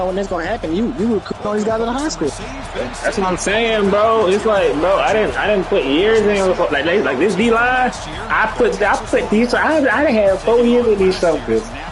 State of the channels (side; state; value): both; identical; correlation 1.00